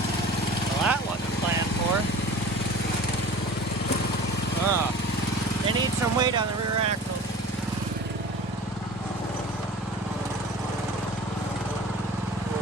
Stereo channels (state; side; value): normal; both; correlation 0.41